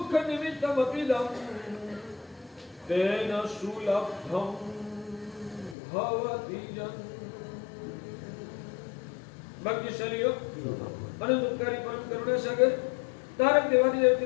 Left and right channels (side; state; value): right; drops out; at 5.8 s